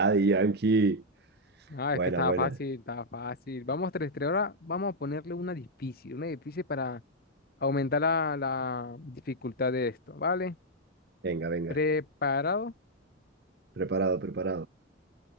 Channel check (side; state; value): both; normal; correlation -0.03